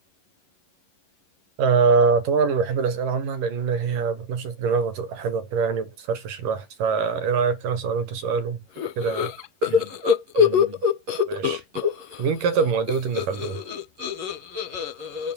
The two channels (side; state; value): left; late; 11 ms